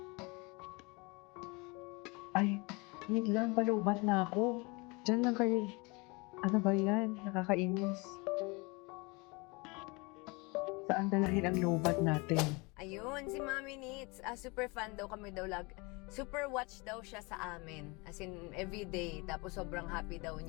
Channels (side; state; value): right; quieter; 27.4 dB